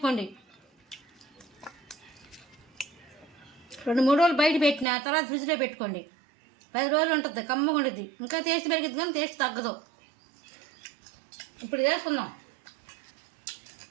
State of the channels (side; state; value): left; drops out; at 4.9 s